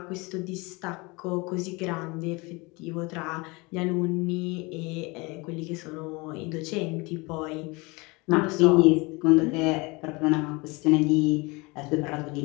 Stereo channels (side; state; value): right; quieter; 26.1 dB